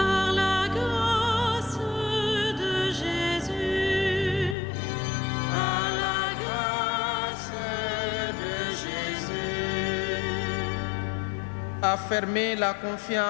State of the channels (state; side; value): drops out; right; at 4.5 s